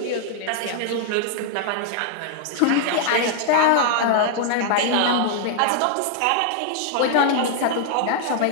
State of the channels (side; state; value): both; different; correlation 0.00